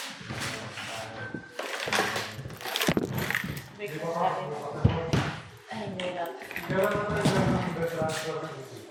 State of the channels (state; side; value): identical; both; correlation 1.00